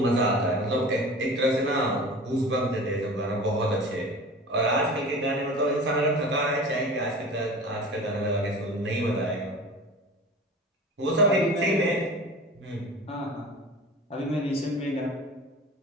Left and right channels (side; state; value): both; normal; correlation 0.37